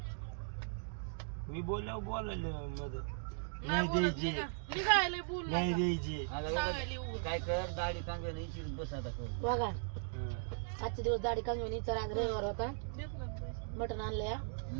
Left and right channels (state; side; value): silent; left; digital silence